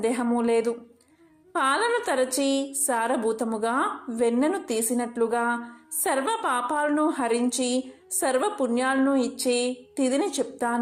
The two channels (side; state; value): both; identical; correlation 1.00